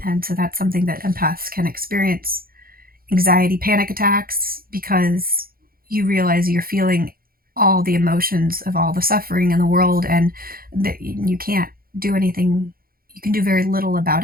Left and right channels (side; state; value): left; late; 0.42 ms